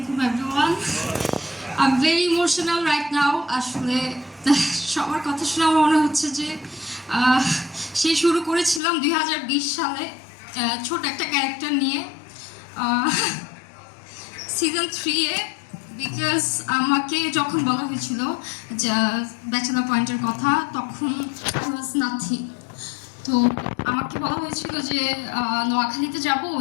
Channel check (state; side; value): drops out; right; at 8.8 s